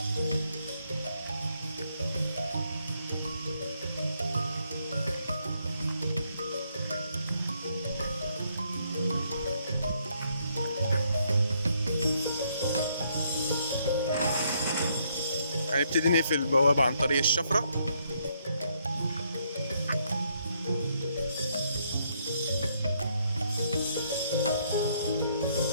هنبتدي نقفل البوابة عن طريق الشفرة.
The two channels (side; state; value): both; inverted; correlation -0.72